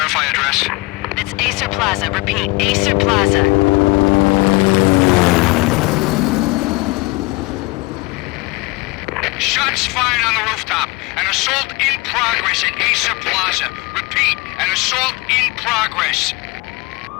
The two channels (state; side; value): quieter; right; 24.1 dB